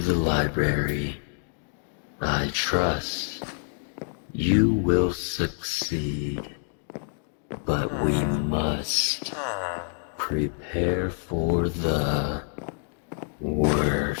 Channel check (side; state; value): right; silent; digital silence